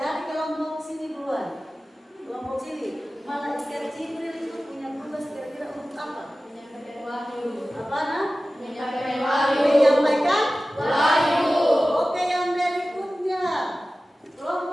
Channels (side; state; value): both; normal; correlation 0.96